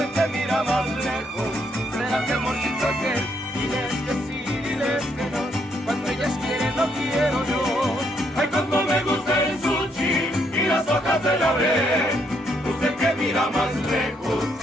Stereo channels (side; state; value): both; normal; correlation 0.73